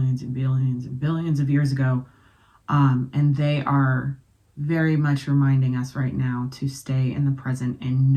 and billions and billions of years ago. And they are very much reminding us right now to stay in the present and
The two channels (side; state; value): both; identical; correlation 1.00